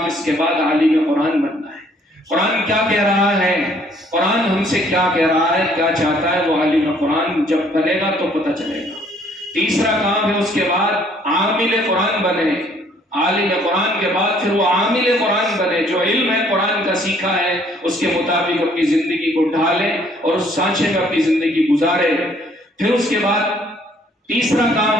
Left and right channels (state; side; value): normal; both; correlation 0.62